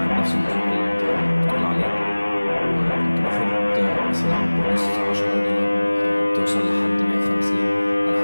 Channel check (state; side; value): inverted; both; correlation -1.00